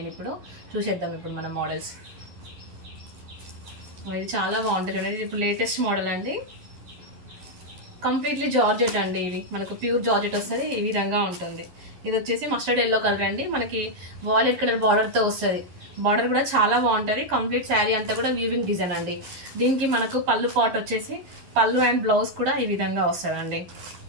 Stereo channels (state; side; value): late; left; 11 ms